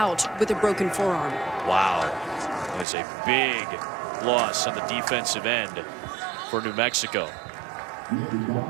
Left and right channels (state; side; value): drops out; left; at 2.9 s